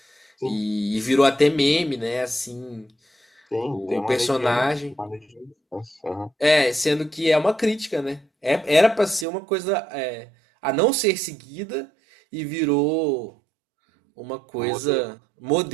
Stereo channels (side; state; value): left; drops out; at 9.2 s